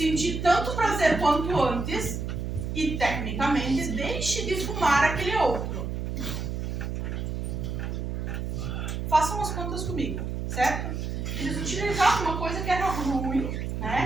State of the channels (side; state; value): right; noise; hum, 3 dB below the sound